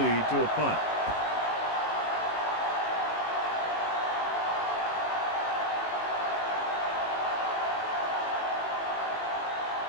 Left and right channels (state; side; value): late; right; 18 ms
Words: to a punt.